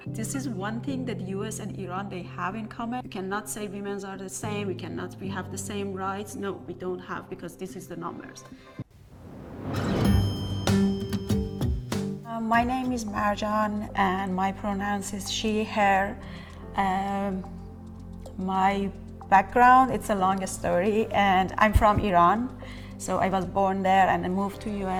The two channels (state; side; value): identical; both; correlation 1.00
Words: This is one thing that US and Iran, they have in common. We cannot say women are the same, we have the same rights. No, we don't have, because this is the numbers. My name is Marjan and my pronouns is she, her. My background, it's a long story, and I'm from Iran. So I was born there and I moved to